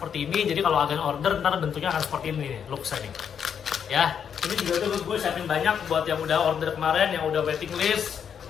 ini. Jadi kalau agan order ntar bentuknya akan seperti ini nih, looks-nya nih. Ya, ini juga tuh gue siapin banyak buat yang udah order kemarin, yang udah waiting list.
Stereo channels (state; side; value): quieter; right; 7.8 dB